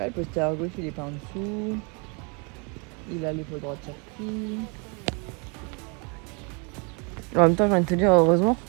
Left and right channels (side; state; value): left; quieter; 33.4 dB